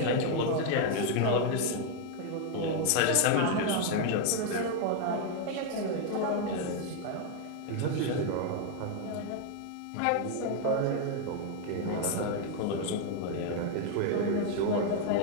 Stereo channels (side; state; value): both; different; correlation 0.01